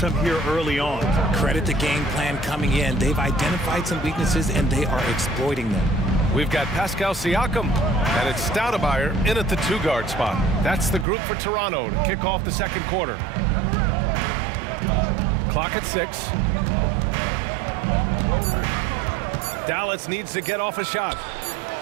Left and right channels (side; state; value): left; drops out; at 11.1 s